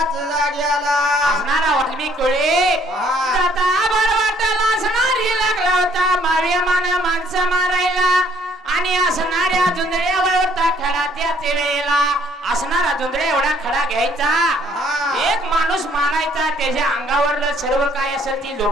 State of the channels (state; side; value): normal; both; correlation 0.62